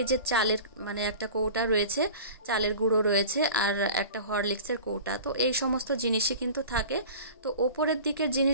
এই যে চালের মানে একটা কৌটা রয়েছে, চালের গুঁড়ো রয়েছে, আর একটা হরলিক্সের কৌটা। তো এই সমস্ত জিনিসই কিন্তু থাকে। তো ওপরের দিকের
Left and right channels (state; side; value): inverted; both; correlation -0.38